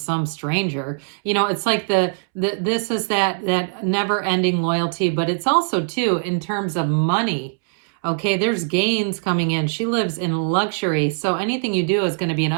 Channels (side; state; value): left; silent; 65 dB below the other